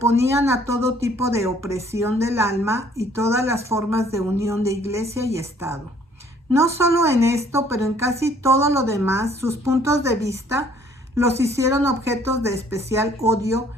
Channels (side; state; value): both; normal; correlation 0.59